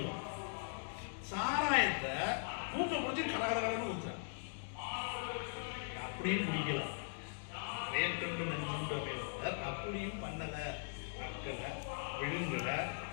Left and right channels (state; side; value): silent; right; digital silence